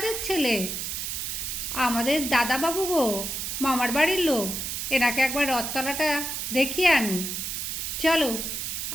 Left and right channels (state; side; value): noise; right; hiss, 3 dB below the sound